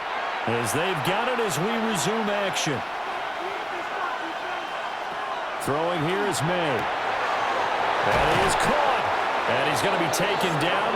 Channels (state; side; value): identical; both; correlation 1.00